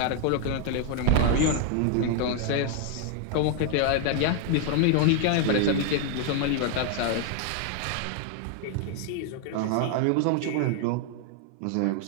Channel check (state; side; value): different; both; correlation 0.00